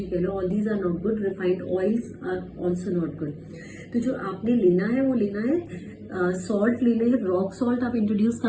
कह लो, all these are not good, refined oils are also not good. तो जो आपने लेना है वो लेना है सॉल्ट लेने हैं, रॉक सॉल्ट आप इंट्रोड्यूस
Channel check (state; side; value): identical; both; correlation 1.00